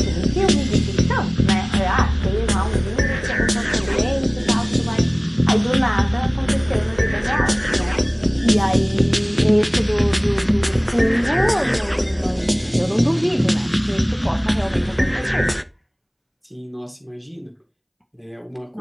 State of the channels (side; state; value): both; identical; correlation 1.00